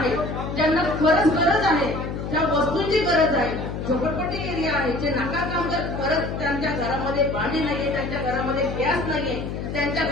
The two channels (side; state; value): left; noise; hum, 5 dB below the sound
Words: ज्यांना खरंच गरज आहे, ज्या वस्तूंची गरज आहे, झोपडपट्टी एरिया आहे, जे नाका कामगार खरंच त्यांच्या घरामध्ये पाणी नाहीये, त्यांच्या घरामध्ये गॅस नाहीये, त्यांच्या